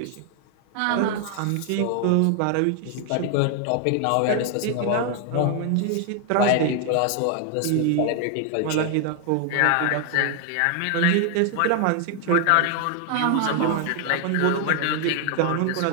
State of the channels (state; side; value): different; both; correlation 0.00